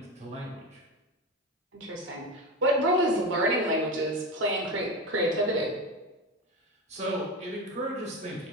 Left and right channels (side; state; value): both; normal; correlation 0.21